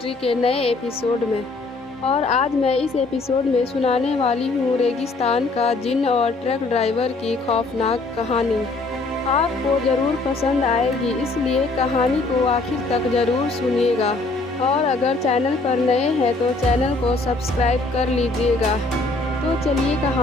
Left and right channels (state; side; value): quieter; right; 3.3 dB